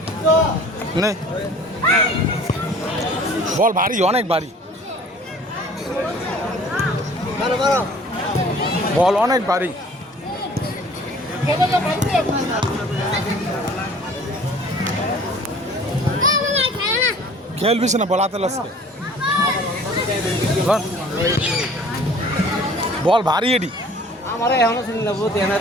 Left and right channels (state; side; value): normal; both; correlation 0.49